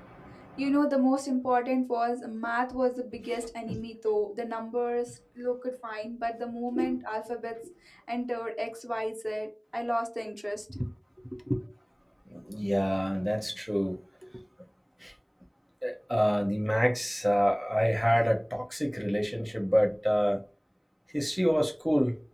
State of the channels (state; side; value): identical; both; correlation 1.00